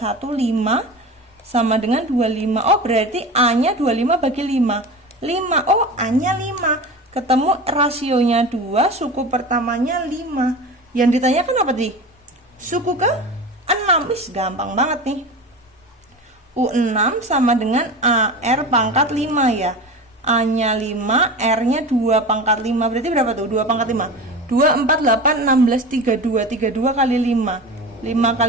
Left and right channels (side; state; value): both; normal; correlation 0.30